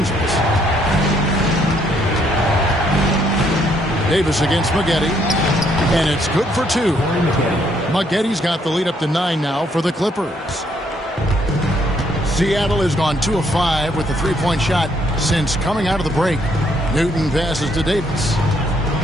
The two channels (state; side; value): normal; both; correlation 0.70